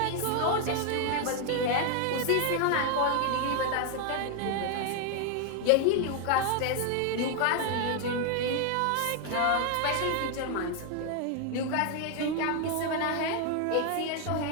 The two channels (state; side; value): different; both; correlation 0.01